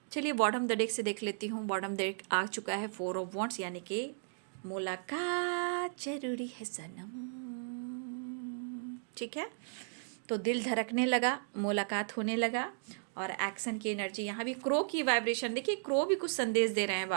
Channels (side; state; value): left; silent; digital silence